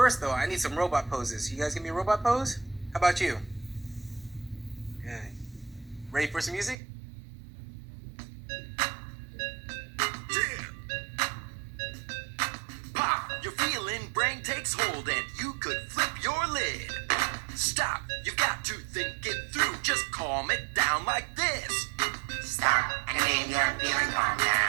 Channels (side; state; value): left; drops out; at 6.8 s